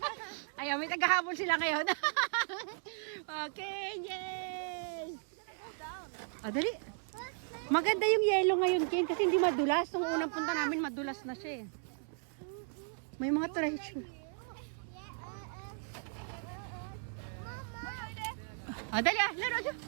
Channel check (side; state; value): left; silent; 54 dB below the other